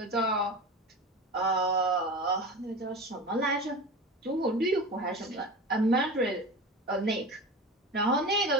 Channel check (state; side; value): normal; both; correlation 0.30